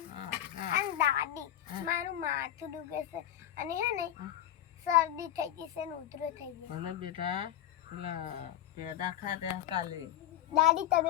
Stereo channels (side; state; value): right; quieter; 11.8 dB